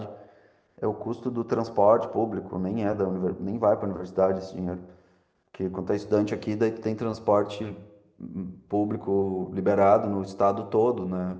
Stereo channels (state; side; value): identical; both; correlation 1.00